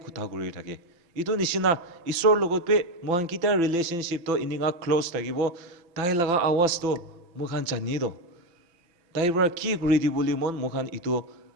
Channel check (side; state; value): left; late; 6.0 ms